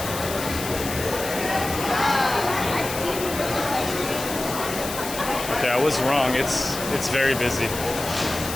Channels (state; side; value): noise; left; hiss, 8 dB below the sound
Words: Okay, I was wrong. It's very busy.